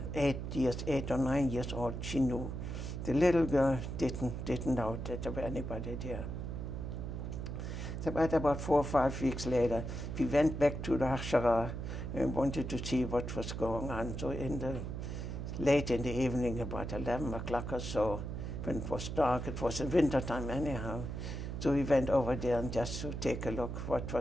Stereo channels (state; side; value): noise; right; hum, 5 dB below the sound